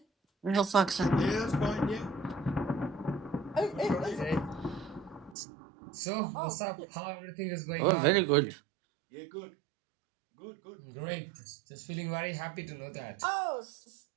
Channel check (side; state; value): left; drops out; at 5.4 s